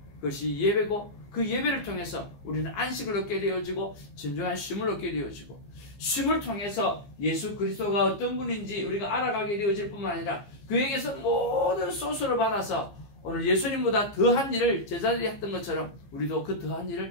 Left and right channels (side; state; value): right; late; 15 ms